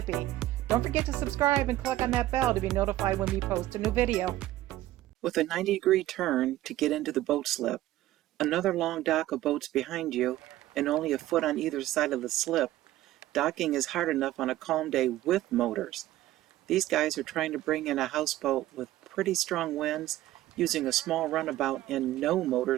Don't forget to subscribe and click on that bell to be notified when we post a new video. With a 90-degree turn to get into the boat slip, another long dock of boats behind you, and only a foot on either side of the slip, docking is hard enough on a calm day with motors. These guys are trying to bring in a houseboat with pretty strong winds, using a small runabout and no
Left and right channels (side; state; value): left; quieter; 15.2 dB